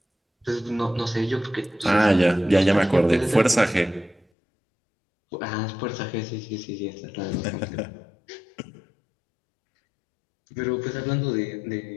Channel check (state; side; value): drops out; right; at 4.2 s